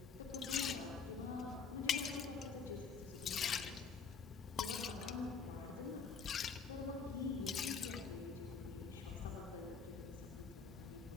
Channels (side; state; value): right; quieter; 5.6 dB